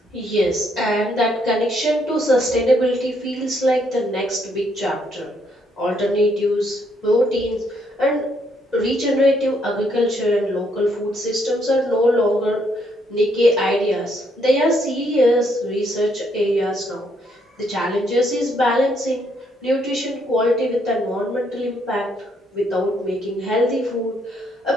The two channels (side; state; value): both; normal; correlation 0.72